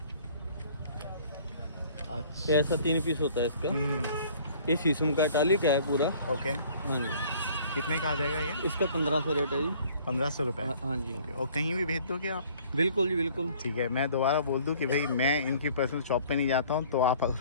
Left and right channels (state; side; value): inverted; both; correlation -0.54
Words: अच्छा। ऐसा 3 पीस होता है इसका। हम्म, ये शीशम का टाली का है पूरा। ओके। हाँ जी। कितने का आ जाएगा ये? इसका 1500 रेट है जी। 1500 रुपये? हाँ जी। ओके। और कहीं भी भेज दोगे आप? बिल्कुल जी, बिल्कुल। ठीक है। मैं दोबारा बोल दूं कि भाई मैं इनकी पर्सनल शॉप पे नहीं जाता हूं, तो आप